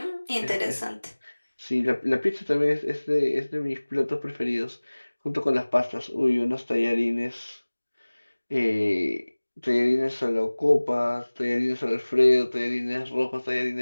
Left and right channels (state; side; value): inverted; both; correlation -1.00